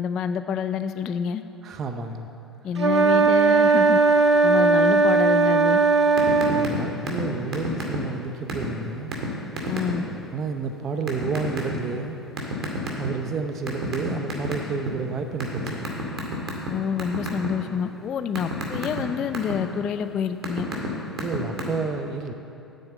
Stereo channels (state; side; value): normal; both; correlation 0.48